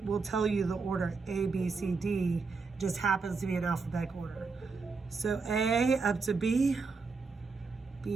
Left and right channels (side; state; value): left; quieter; 4.5 dB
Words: tell you the order A, B, C, D just happens to be in alphabetical order. So A up to B,